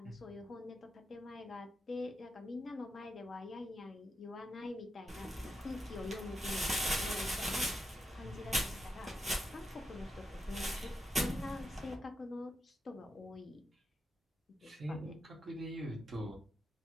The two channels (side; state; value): both; normal; correlation 0.85